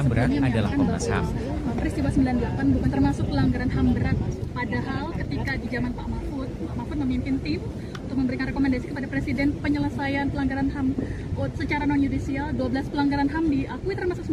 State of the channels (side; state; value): both; identical; correlation 1.00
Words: berat adalah Komnas HAM. Peristiwa 98 bukan termasuk pelanggaran HAM berat, padahal ketika di zaman Pak Mahfud memimpin tim untuk memberikan rekomendasi kepada Presiden penyelesaian pelanggaran HAM secara non-yudisial, 12 pelanggaran HAM diakui termasuk